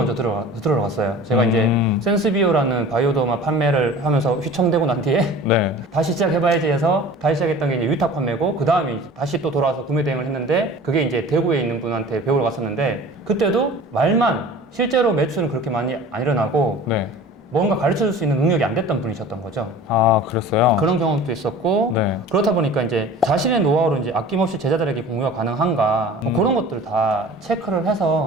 들어갔어요. 제가 이제 센스비오라는 바이오더마 판매를 하면서 휘청대고 난 뒤에 네. 다시 시작해봐야지 해서 다시 시작했던 게 이제 위탁 판매고 그 다음에 다시 또 돌아와서 구매 대행을 했는데 그게 이제 대구에 있는 분한테 배우러 갔었는데 그때도 말만 실제로 매출은 그렇게 많이 안 일어나고 네. 뭔가 가르쳐 줄 수 있는 능력이 안 됐던 분이셨던 거죠. 그랬어요? 그런 경험도 있었고 네. 그렇다 보니까 이제 자신의 노하우를 이제 아낌없이 제자들에게 공유가 가능한가 뭐 그런 것들 다 체크를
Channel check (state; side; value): normal; both; correlation 0.42